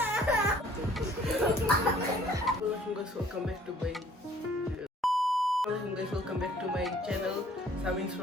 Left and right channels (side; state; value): both; normal; correlation 0.57